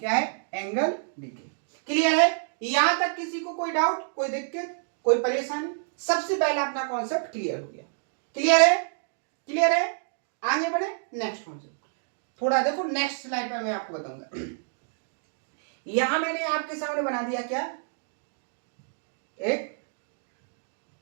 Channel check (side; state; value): left; silent; digital silence